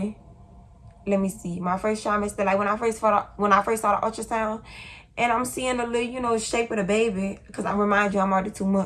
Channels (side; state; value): both; identical; correlation 1.00